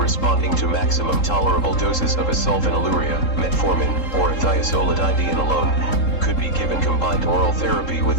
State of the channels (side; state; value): right; late; 3.7 ms